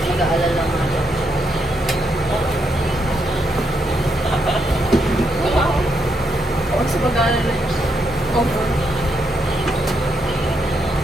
nag-aalala nga daw. Huwag sa pag-aalala niya. Comfort.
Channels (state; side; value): normal; both; correlation 0.79